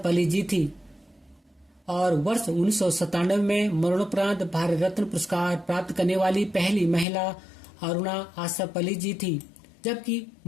अली जी थी और वर्ष 1997 में मरणोपरांत भारत रत्न पुरस्कार प्राप्त करने वाली पहली महिला अरुणा आसफ अली जी थी, जबकि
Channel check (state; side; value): drops out; right; at 7.1 s